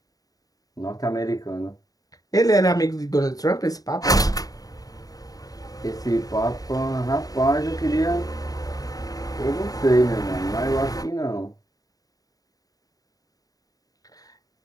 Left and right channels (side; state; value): right; late; 0.18 ms